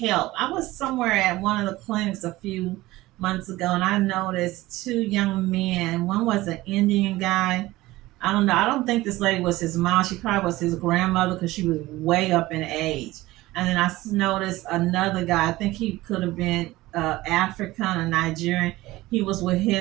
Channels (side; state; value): left; quieter; 18.2 dB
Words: I was somewhere at one of the clinics a few months ago and I noticed two young men. One was an Indian guy. I don't know. I don't think this lady was his mom. She probably was his grandmother because she was way up in age. And then I noticed another guy. I think he could have been African or Nigerian. He was with